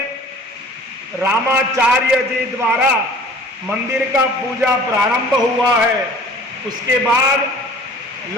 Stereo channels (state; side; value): normal; both; correlation 0.47